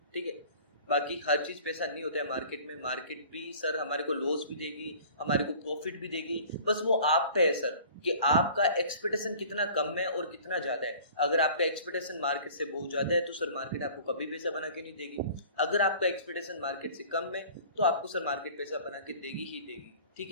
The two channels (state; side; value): inverted; both; correlation -0.46